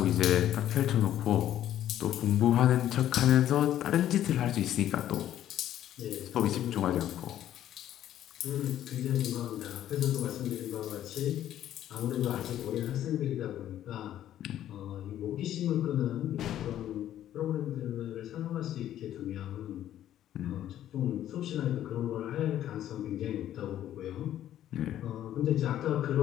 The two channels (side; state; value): right; quieter; 11.8 dB